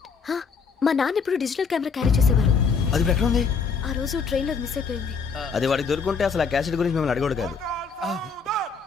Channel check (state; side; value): quieter; right; 5.3 dB